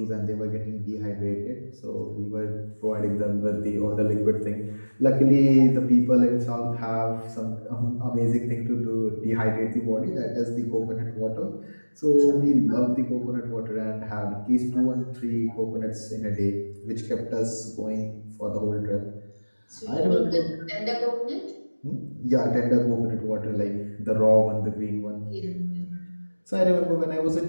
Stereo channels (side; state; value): both; inverted; correlation -1.00